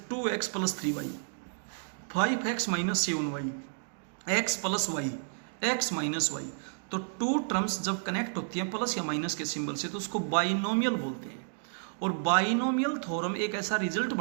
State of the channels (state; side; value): silent; left; digital silence